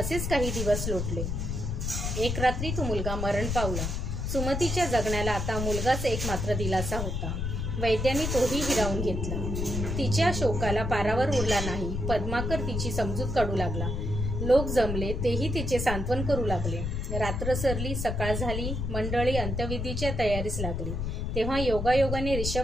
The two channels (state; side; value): noise; left; rumble, 2 dB below the sound